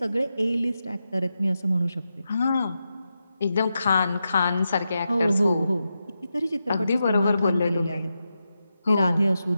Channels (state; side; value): inverted; both; correlation -0.88